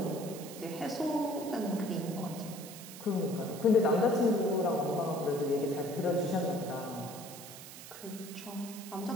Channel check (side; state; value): right; noise; hiss, 14 dB below the sound